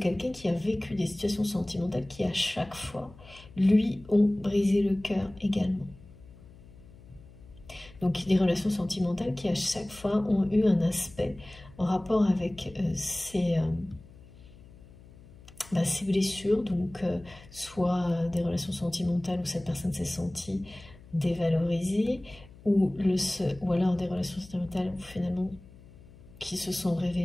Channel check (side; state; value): left; noise; hum, 21 dB below the sound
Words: qui a vécu des situations sentimentales qui à chaque fois lui ont brisé le cœur également. Donc des relations sentimentales qui à chaque fois ont eu un aspect en rapport avec ces blessures, donc soit des relations sentimentales où cette personne s'est sentie dévalorisée, ou alors des relations sentimentales où finalement qui se sont